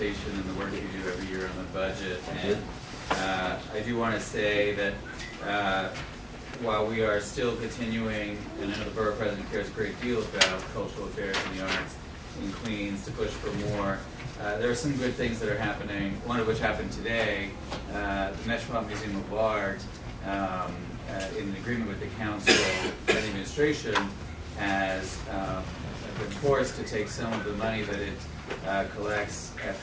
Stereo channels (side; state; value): both; identical; correlation 1.00